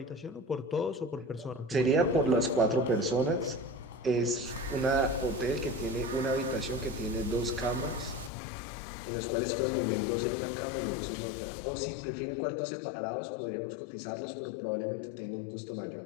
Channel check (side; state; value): right; drops out; at 8.3 s